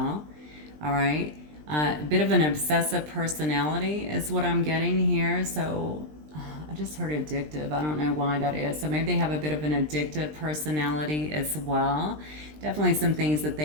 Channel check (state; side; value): late; left; 20 ms